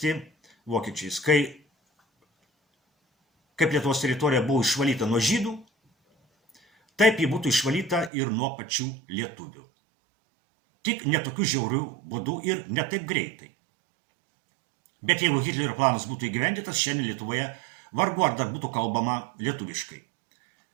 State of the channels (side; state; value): left; drops out; at 8.1 s